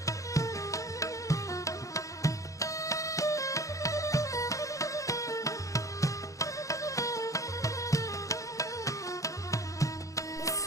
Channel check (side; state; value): right; late; 0.16 ms